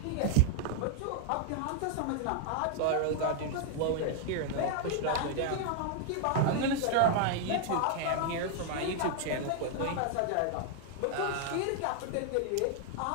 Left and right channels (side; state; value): both; different; correlation 0.00